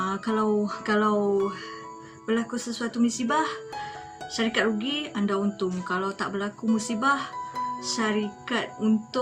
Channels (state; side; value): identical; both; correlation 1.00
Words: Kalau berlaku sesuatu musibah, syarikat rugi, anda untung. Kalau tak berlaku musibah, syarikat